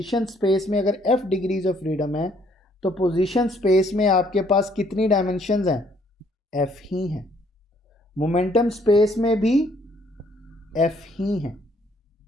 स्पेस में अगर f डिग्रीज ऑफ फ्रीडम है तो पोजीशन स्पेस में आपके पास कितनी डायमेंशंस हैं, f ही हैं। मोमेंटम स्पेस में भी f ही हैं,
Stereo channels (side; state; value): both; normal; correlation 0.65